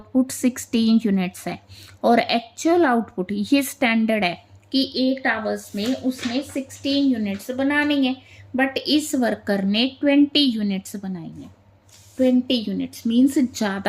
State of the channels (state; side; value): identical; both; correlation 1.00